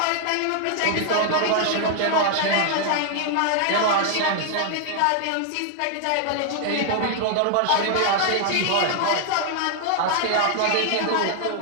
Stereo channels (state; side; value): different; both; correlation 0.00